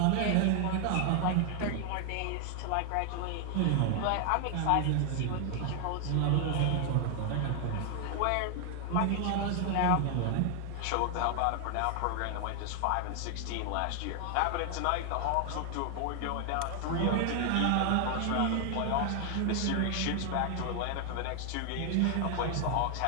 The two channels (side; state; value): both; different; correlation 0.00